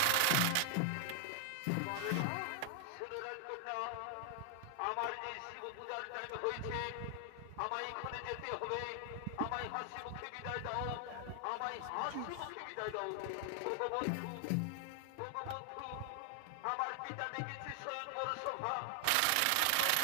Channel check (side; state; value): both; different; correlation 0.00